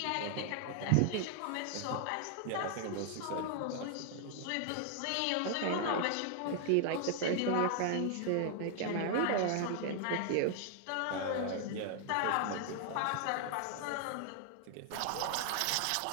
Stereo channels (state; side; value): different; both; correlation 0.00